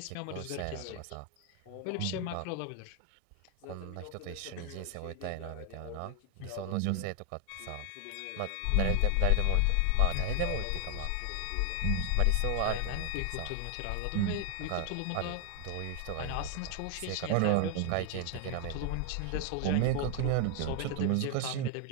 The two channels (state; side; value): different; both; correlation 0.00